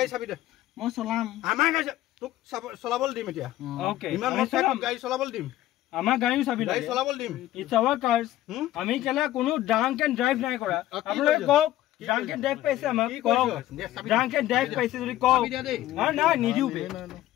চাবি দে মই চলাম আমাৰ গাড়ী তোক চলাবলৈ দিম এতিয়া okay ইমান মই গাড়ী চলাবলৈ দিম আমাৰ গাড়ীও চাবি গাড়ী চলাবলৈ দিম it's our cars আমি কেলা কোনো ড্ৰাংক এণ্ড ড্ৰাইভ নাই কৰা আপোনালোকে কওক ড্ৰাংক এণ্ড ড্ৰাইভ পাইছে আমাক কওক ড্ৰাংক এণ্ড ড্ৰাইভ পাইছে যদি কওক না নিদিও বে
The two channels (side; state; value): right; quieter; 14.5 dB